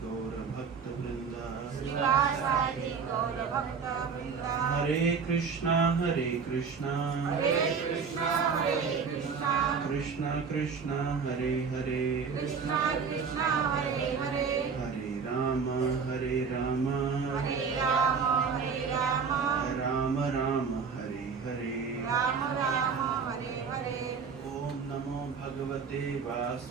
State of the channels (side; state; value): left; quieter; 5.8 dB